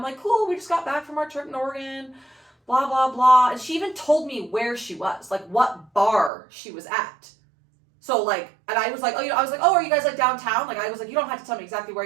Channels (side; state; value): left; drops out; at 6.3 s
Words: like, cool. We just got back from our trip in Oregon. Blah, blah, blah. And she even told me where she was, like what bar she was at. So like, and I was like, I was like, oh, are you guys like downtown? Like, I was like, you don't have to tell me exactly where